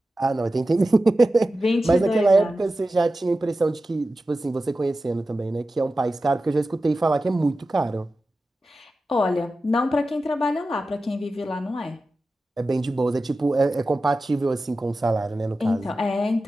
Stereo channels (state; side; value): normal; both; correlation 0.93